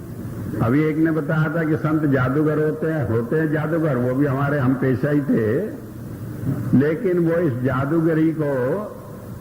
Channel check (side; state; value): both; identical; correlation 1.00